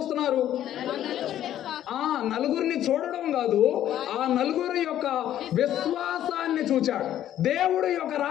నలుగురిని చూడడం కాదు, ఆ నలుగురి యొక్క విశ్వాసాన్ని చూచాడు. దేవుడు యొక్క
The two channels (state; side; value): quieter; right; 11.7 dB